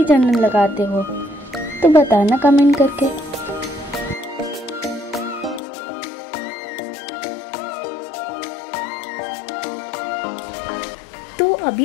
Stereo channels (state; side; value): drops out; right; at 5.6 s